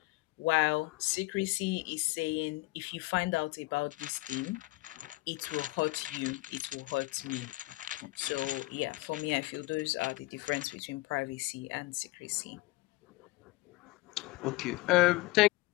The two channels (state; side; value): quieter; right; 21.2 dB